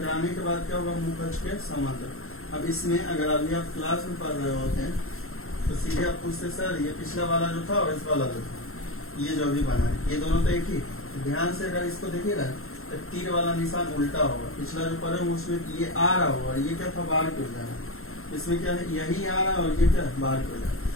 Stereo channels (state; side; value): late; right; 0.62 ms